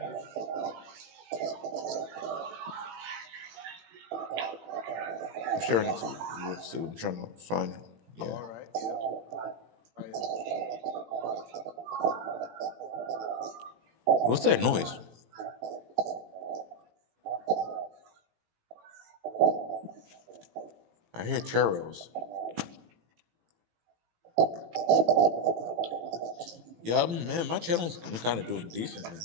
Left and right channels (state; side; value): late; left; 18 ms